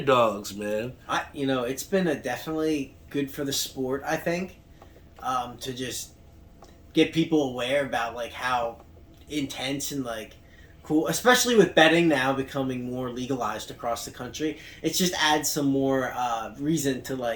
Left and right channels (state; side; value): identical; both; correlation 1.00